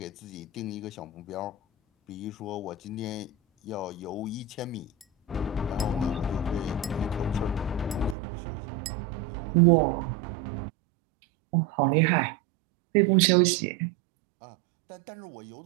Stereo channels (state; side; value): drops out; left; at 8.2 s